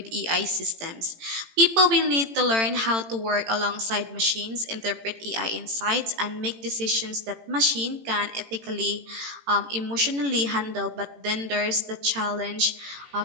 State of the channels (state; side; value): late; left; 18 ms